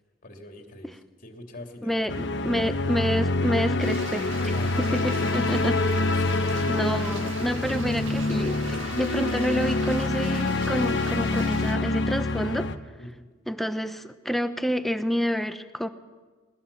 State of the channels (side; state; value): both; normal; correlation 0.67